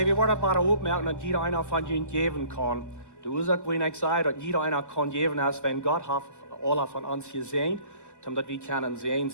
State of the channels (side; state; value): left; late; 1.2 ms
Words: wunderbare Aufmerkung, dass jeder einer von ihnen geben kann. Du sagst, wenn ich sage, dass jeder einer kann geben, als wenn Gott hat alle von uns gesehen, damit wir können sehen